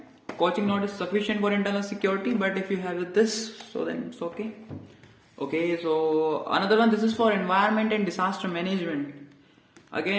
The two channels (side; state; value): both; identical; correlation 1.00